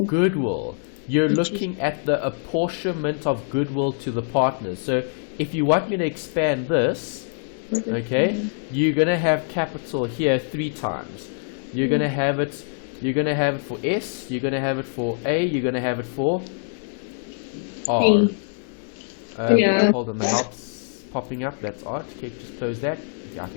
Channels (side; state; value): right; silent; digital silence